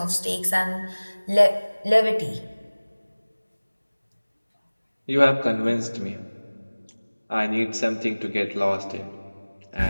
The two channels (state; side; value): inverted; both; correlation -1.00